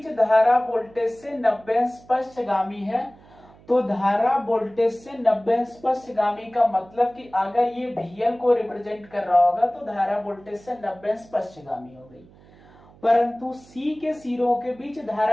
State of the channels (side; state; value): right; noise; hum, 25 dB below the sound